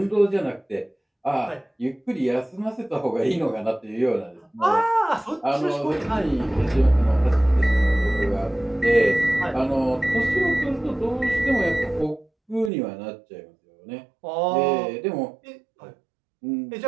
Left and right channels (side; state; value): left; drops out; at 12.7 s